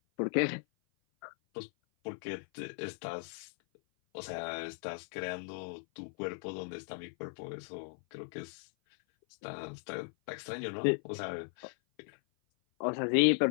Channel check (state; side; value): silent; right; 53 dB below the other